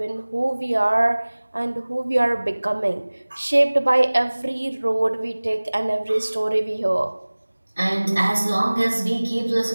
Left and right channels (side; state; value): both; inverted; correlation -1.00